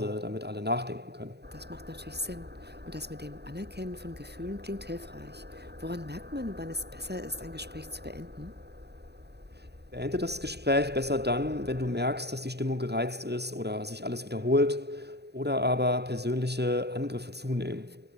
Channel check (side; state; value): left; late; 0.48 ms